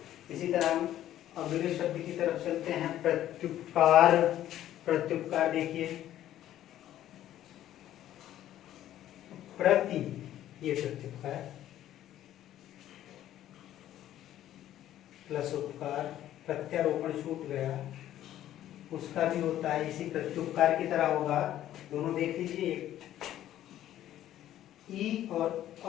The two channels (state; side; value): quieter; right; 12.5 dB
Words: इसी तरह हम अगले शब्द की तरफ चलते हैं, प्रत्युपकार। प्रत्युपकार देखिए, प्रति, ये प्रत्युपकार, प्लस उपकार, प्रत्यारोपण छूट गया, उसका भी होता है इसी प्रत्युपकार की तरह होगा। दोनों देख लीजिए, ई और